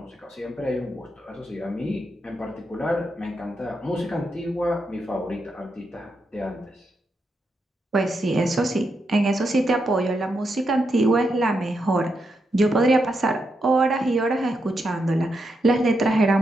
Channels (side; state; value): both; normal; correlation 0.83